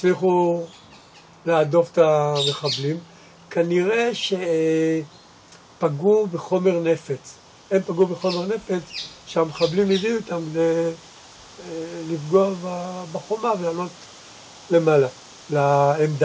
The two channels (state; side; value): identical; both; correlation 1.00